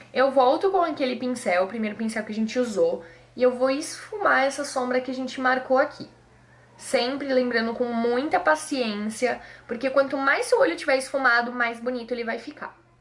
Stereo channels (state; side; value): identical; both; correlation 1.00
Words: Eu volto com aquele pincel, o primeiro pincel que a gente usou, e eu vou esfumar essa sombra que a gente marcou aqui. Sempre lembrando com muita paciência, porque quanto mais seu olho tiver esfumado, mais bonito ele vai ficar.